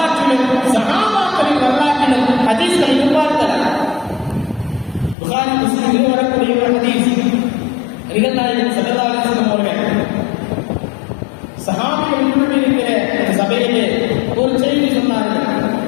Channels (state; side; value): drops out; right; at 5.2 s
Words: சஹாபாக்களின் வரலாற்றிலும் ஹதீஸ்களை பார்க்கலாம். புகாரி முஸ்லிமில் வரக்கூடிய ஒரு ஹதீஸ், நபிகள் நாயகம் ஸல்லல்லாஹு அலைஹி வஸல்லம் அவர்கள் சஹாபிகள் இருக்கிற சபையிலே ஒரு செய்தி சொன்னார்கள்.